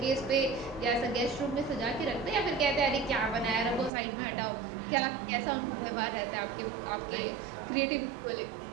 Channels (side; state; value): left; drops out; at 3.9 s